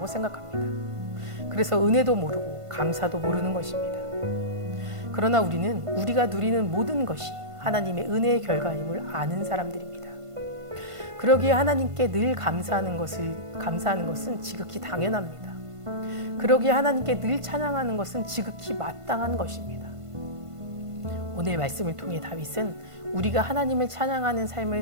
생각합니다. 그래서 은혜도 모르고 감사도 모르는 것입니다. 그러나 우리는 우리가 누리는 모든 것이 하나님의 은혜의 결과임을 아는 사람들입니다. 그러기에 하나님께 늘 감사하는 것은 지극히 당연합니다. 그러기에 하나님께 늘 찬양하는 것은 지극히 마땅한 것입니다. 오늘 말씀을 통해 다윗은 우리가 하나님을 찬양하는 삶을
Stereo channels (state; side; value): late; left; 1.5 ms